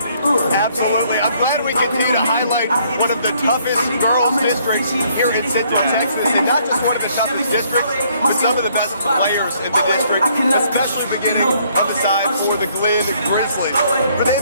Absolutely. I'm glad we continue to highlight one of the toughest girls districts here in Central Texas, and not just one of the toughest districts, but some of the best players in the district, especially beginning on the side for the Glen Grizzlies. For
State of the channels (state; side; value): inverted; both; correlation -0.66